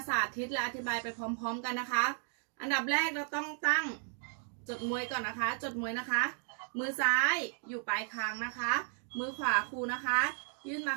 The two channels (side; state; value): left; silent; 55 dB below the other